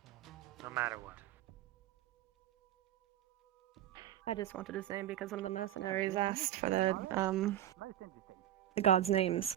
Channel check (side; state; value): left; quieter; 12.3 dB